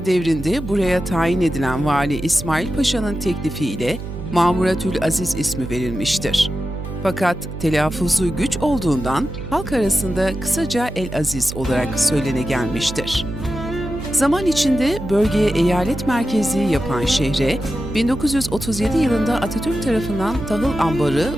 devrinde buraya tayin edilen Vali İsmail Paşa'nın teklifiyle Mamuratül Aziz ismi verilmiştir. Fakat telaffuzu güç olduğundan halk arasında kısaca El-Aziz olarak söylene gelmiştir. Zaman içinde bölgeye eyalet merkezi yapan şehre 1937 yılında Atatürk tarafından tahıl ambarı,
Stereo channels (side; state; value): right; noise; hum, 9 dB below the sound